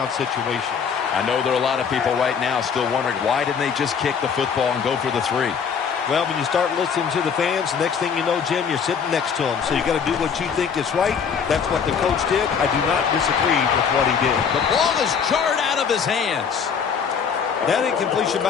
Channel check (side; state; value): right; quieter; 6.6 dB